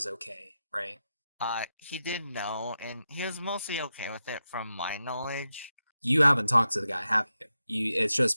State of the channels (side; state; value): both; inverted; correlation -0.89